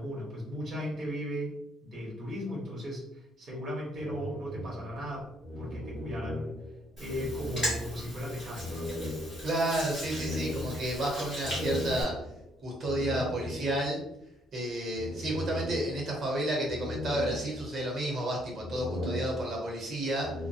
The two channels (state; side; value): normal; both; correlation 0.69